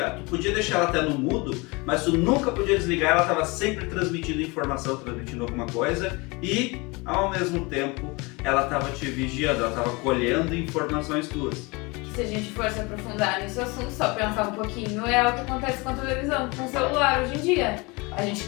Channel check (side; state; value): right; quieter; 26.3 dB